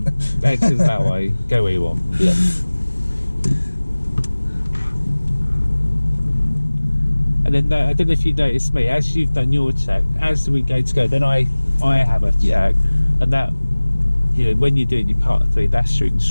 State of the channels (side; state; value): both; inverted; correlation -1.00